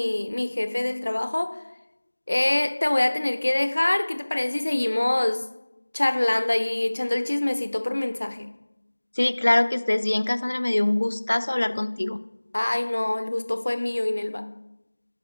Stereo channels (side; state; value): both; inverted; correlation -1.00